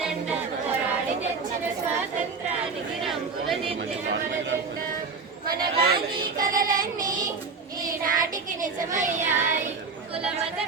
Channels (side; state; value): left; quieter; 4.7 dB